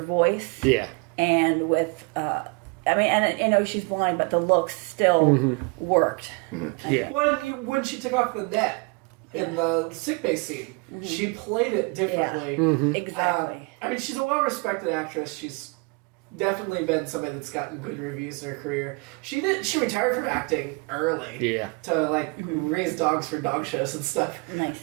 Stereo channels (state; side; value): quieter; left; 30.9 dB